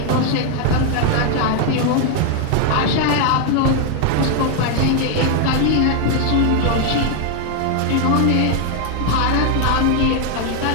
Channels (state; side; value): different; both; correlation 0.00